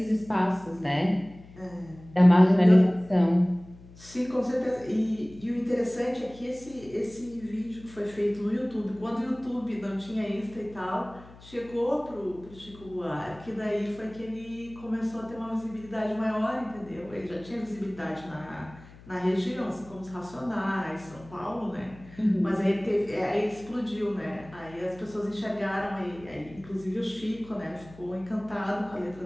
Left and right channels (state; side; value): noise; left; hum, 20 dB below the sound